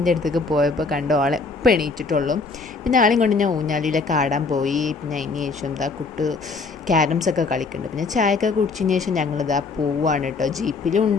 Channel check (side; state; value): right; quieter; 4.3 dB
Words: അടുത്തേക്ക് പോയപ്പോൾ കണ്ടോ ആളെ എപ്പോൾ എണീറ്റിട്ടുള്ളൂ. പിന്നെ ആളെയും കൊണ്ട് ഞാൻ ഊഞ്ഞാലിയിലൊക്കെ ആടാൻ പോയി. പിന്നെ അതിന് ശേഷം ഇതാ ക്യാരംസൊക്കെ കളിക്കുന്നുണ്ട്. പിന്നെ ചായയൊക്കെ കുടിച്ചതിന് ശേഷം ഞങ്ങളിതാ പോവുകയാണ് കേട്ടോ.